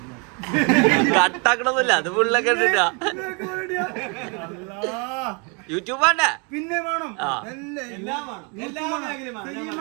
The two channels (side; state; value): left; quieter; 33.8 dB